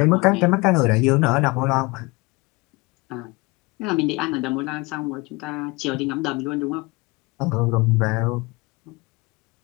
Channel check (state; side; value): quieter; right; 25.0 dB